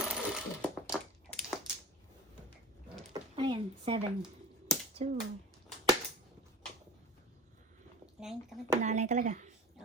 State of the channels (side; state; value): both; normal; correlation 0.35